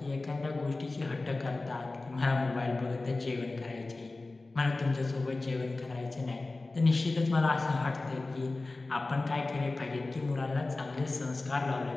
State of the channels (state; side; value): quieter; right; 3.2 dB